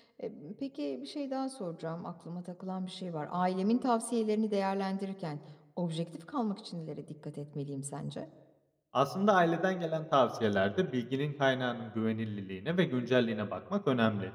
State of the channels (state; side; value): identical; both; correlation 1.00